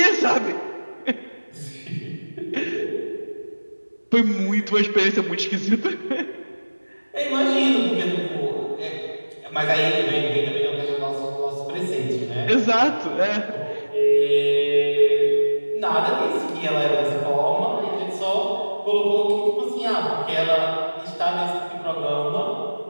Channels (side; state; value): both; inverted; correlation -1.00